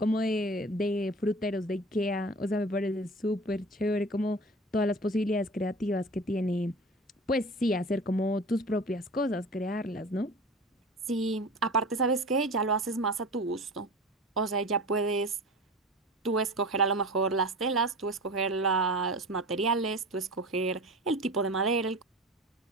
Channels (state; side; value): normal; both; correlation 0.35